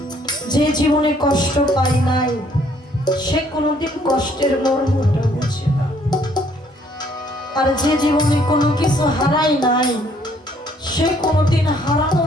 যে জীবনে কষ্ট পায় নাই সে কোনোদিন কষ্টের মর্মটা বুঝে না, আর যে জীবনে কোনো কিছু হারায় নাই সে কোনোদিন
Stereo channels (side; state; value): both; normal; correlation 0.64